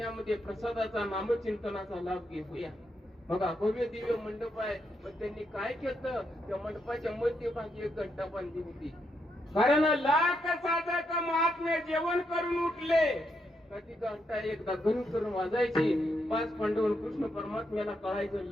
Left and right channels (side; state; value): both; normal; correlation 0.80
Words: प्रसादाचा नामचिंतनाचा लाभ घेऊया. बघा भव्य दिव्य मंडप आहे, पण त्यांनी काय केलं, त्या मंडपाच्या मध्यभागी एक घंटा बांधली होती. कारण लाख साधक महात्मे जेवण करून उठले का ती घंटा एकदा घन करून वाजायची. 5 पांडव कृष्ण परमात्म्याला कळायचं